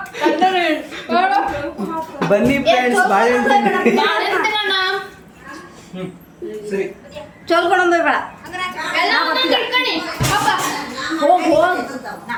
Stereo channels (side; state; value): both; identical; correlation 1.00